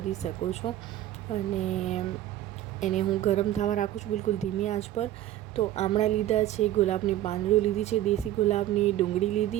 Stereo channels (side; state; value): left; quieter; 13.3 dB